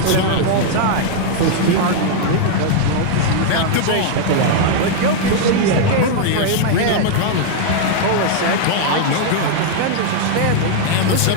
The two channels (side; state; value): both; different; correlation 0.00